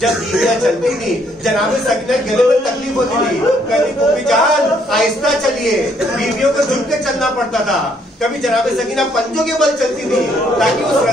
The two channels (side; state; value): both; normal; correlation 0.68